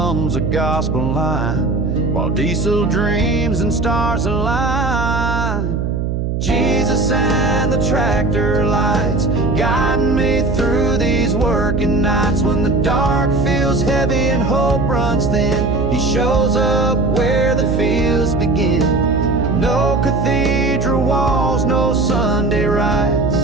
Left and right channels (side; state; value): right; noise; hum, 1 dB below the sound